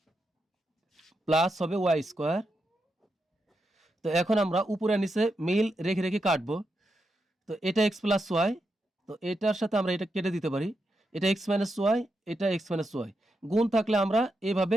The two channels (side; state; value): both; normal; correlation 0.85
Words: plus হবে ওয়াই স্কোয়ার। তো এখন আমরা উপরে নিচে মিল রেখে রেখে কাটবো। তো এটা এক্স প্লাস ওয়াই, তো এটার সাথে আমরা এটা কেটে দিতে পারি, এটা এক্স মাইনাস ওয়াই, এটা এক্স মাইনাস ওয়াই, গুণ থাকলে আমরা এভাবে